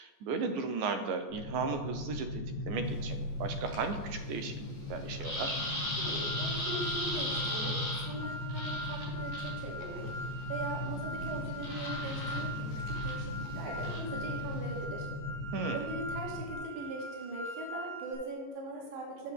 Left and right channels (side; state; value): left; late; 14 ms